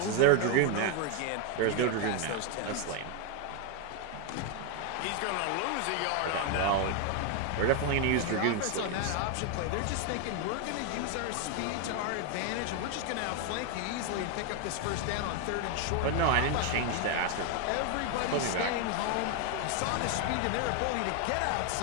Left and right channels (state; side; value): different; both; correlation 0.01